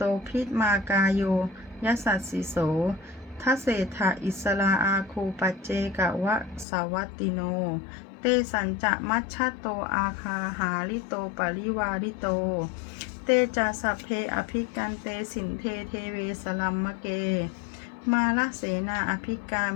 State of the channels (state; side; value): drops out; right; at 6.7 s